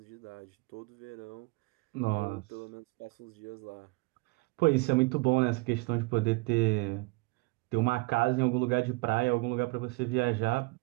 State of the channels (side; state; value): left; quieter; 25.8 dB